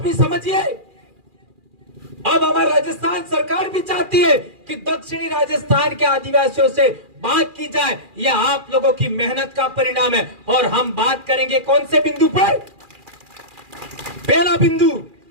भी समझिए। अब हमारा राजस्थान सरकार भी चाहती है कि दक्षिणी राजस्थान के आदिवासियों से बात की जाए। यह आप लोगों की मेहनत का परिणाम है। और हम बात करेंगे कौन से बिंदु पर? पहला बिंदु,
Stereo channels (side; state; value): left; late; 2.4 ms